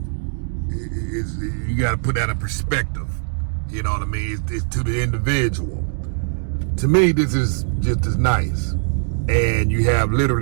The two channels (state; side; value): silent; left; digital silence